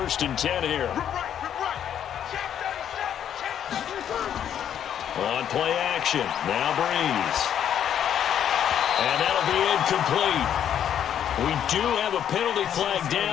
and 10 here. On play action, now Breeze. And that'll be incomplete. We do have a penalty flag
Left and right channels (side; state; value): right; quieter; 9.5 dB